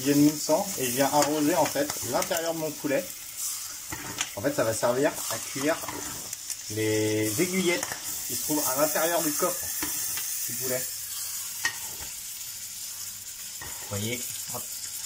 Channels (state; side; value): noise; right; rumble, 29 dB below the sound